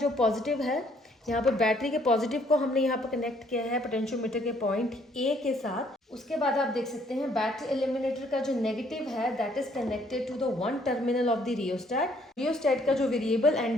पॉजिटिव है, यहाँ पर बैटरी के पॉजिटिव को हमने यहाँ पर कनेक्ट किया है पोटेंशियोमीटर के पॉइंट ए के साथ। उसके बाद आप देख सकते हैं बैटरी एलिमिनेटर का जो नेगेटिव है that is connected to the 1 terminal of the rheostat. Rheostat का जो वेरिएबल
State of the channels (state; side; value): normal; both; correlation 0.65